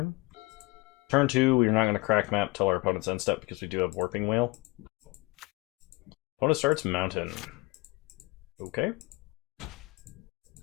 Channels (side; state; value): right; quieter; 23.4 dB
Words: Turn 2, we're not going to crack map till our opponent's end step because we do have Warping Whale. Opponent starts mountain. Okay.